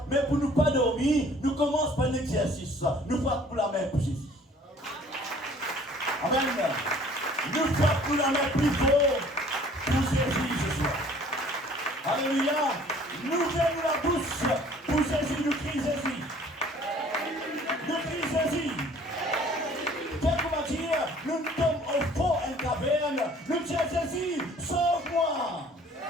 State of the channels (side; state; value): both; normal; correlation 0.53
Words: Mais pour ne pas dormir, nous commençons par l'exercice. Nous frappons la main pour Jésus. Amen. Nous frappons la main plus fort pour Jésus ce soir. Alléluia. Nous ouvrons la bouche pour Jésus, nous crions Jésus. Nous crions Jésus. Quelqu'un va dire, nous sommes au fond en caverne. Nous disons Jésus, sauve-moi.